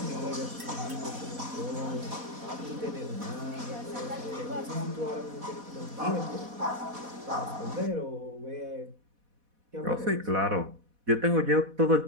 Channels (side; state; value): left; late; 4.1 ms